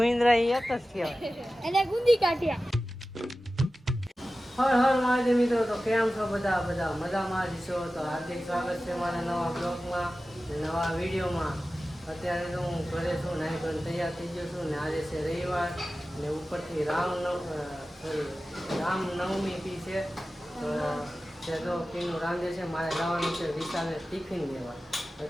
એ એક જ કહેવાય. એને ગુંદી કાઢ્યા. હર હર મહાદેવ મિત્રો, તો કેમ છો બધા મજામાં જ છો? તો હાર્દિક સ્વાગત છે મારા નવા બ્લોગમાં, નવા વિડીયોમાં. અત્યારે તો હું ઘરે છું, નાઈ ધોઈને તૈયાર થઈ ગયો છું ને આજે છે રવિવાર ને ઉપરથી રામનવમી બી છે. તો તે તો પીનું રાંધે છે, મારે જવાનું છે વિશાલે ટિફિન લેવા.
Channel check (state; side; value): normal; both; correlation 0.95